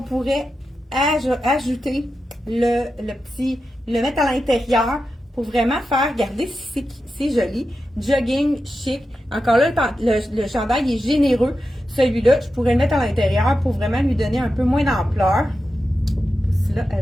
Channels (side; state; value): both; normal; correlation 0.90